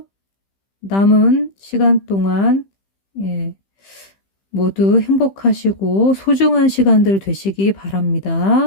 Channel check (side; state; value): right; late; 15 ms